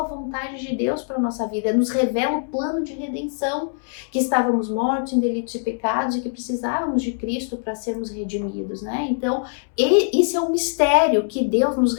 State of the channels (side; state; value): right; silent; 64 dB below the other